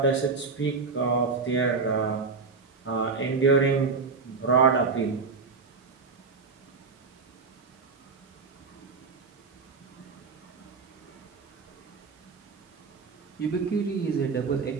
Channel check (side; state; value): left; quieter; 4.7 dB